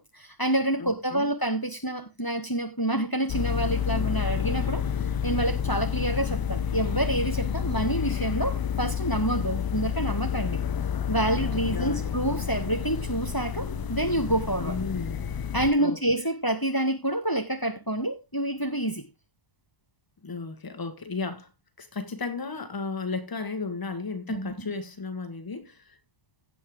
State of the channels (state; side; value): late; right; 1.0 ms